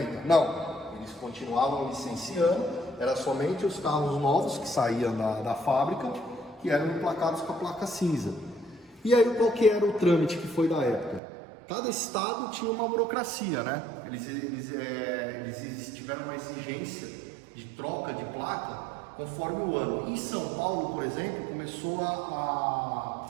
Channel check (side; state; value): left; drops out; at 11.2 s